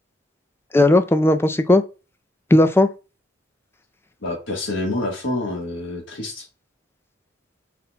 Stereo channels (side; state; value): both; normal; correlation 0.77